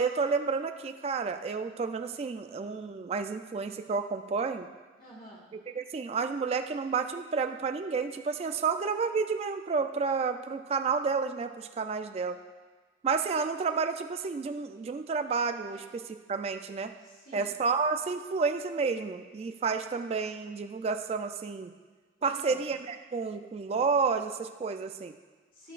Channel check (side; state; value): left; quieter; 4.6 dB